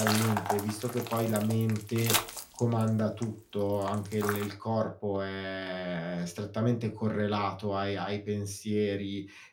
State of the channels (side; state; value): both; identical; correlation 1.00